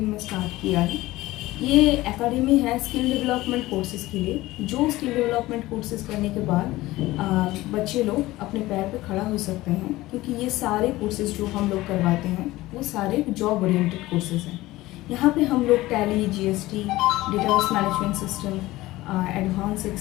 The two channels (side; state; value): right; quieter; 18.0 dB